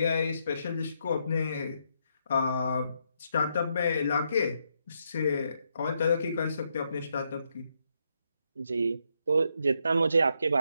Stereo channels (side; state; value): both; inverted; correlation -0.78